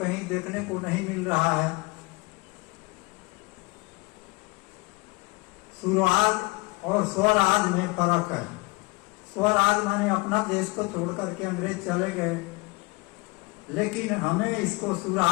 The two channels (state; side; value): quieter; right; 25.4 dB